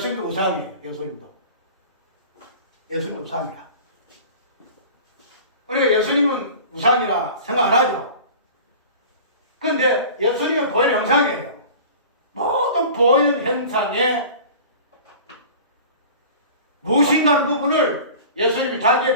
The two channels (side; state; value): both; inverted; correlation -0.40